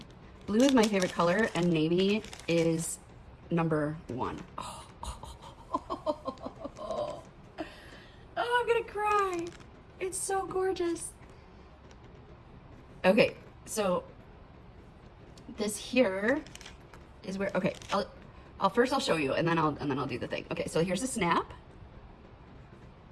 Blue is my favorite color and navy is number one. Oh, I'm gonna cry. It's so gorgeous. Okay. So this here is where, okay, I'll first show you and then I'll do the thing. Okay, so here's a snap.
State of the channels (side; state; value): both; identical; correlation 1.00